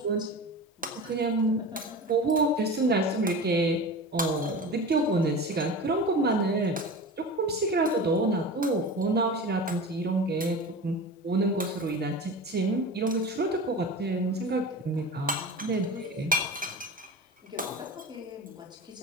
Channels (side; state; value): both; normal; correlation 0.32